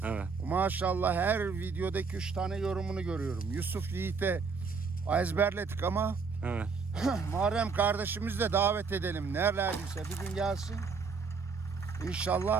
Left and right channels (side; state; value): left; quieter; 5.0 dB